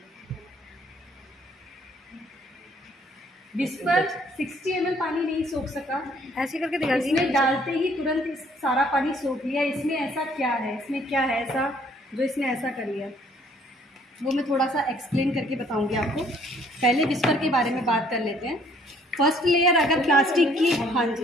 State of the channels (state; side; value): normal; both; correlation 0.62